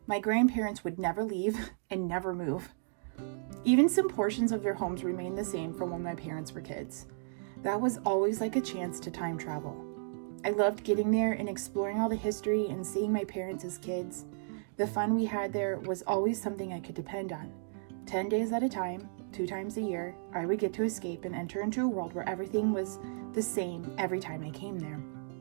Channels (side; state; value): left; silent; digital silence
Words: My grandparents would never leave and never move. Even some portions of their homes remained the same from when my parents were kids. That was always like a chance to time travel. I loved getting there and exploring all the history and seeing my parents as kids. The fun we had there was always something I could depend on. 10 days at a time, 2 times a year, I would get to escape and enter into a world where everything was the same every time I came there.